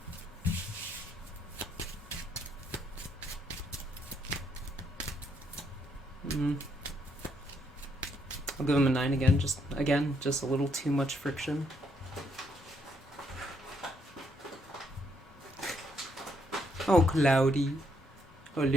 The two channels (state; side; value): normal; both; correlation 0.73